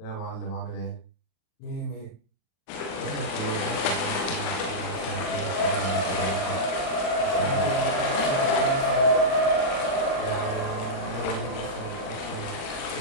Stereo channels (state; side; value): late; right; 40 ms